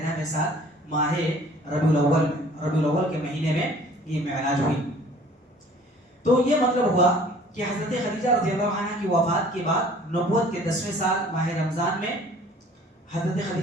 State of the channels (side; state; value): both; normal; correlation 0.52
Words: سال ماہ ربیع الاول کے مہینے میں یہ معراج ہوئی. تو یہ مطلب ہوا کہ حضرت خدیجہ رضی اللہ عنہ کی وفات کے بعد نبوت کے 10ویں سال ماہ رمضان میں حضرت